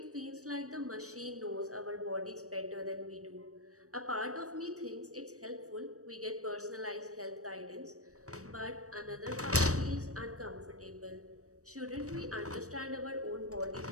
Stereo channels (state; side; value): late; left; 0.66 ms